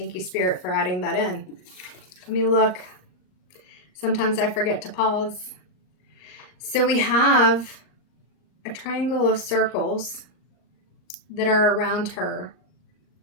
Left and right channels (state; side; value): late; right; 39 ms